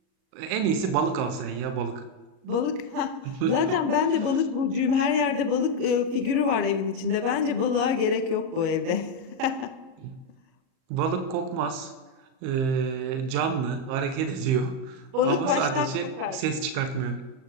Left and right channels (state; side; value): late; left; 38 ms